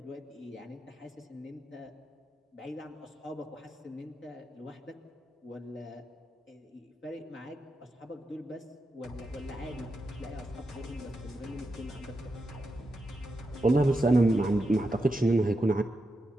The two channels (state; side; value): normal; both; correlation 0.87